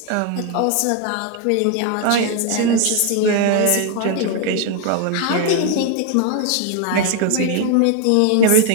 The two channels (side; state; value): both; different; correlation 0.01